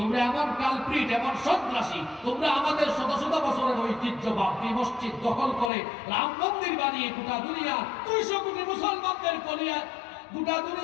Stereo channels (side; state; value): right; drops out; at 5.7 s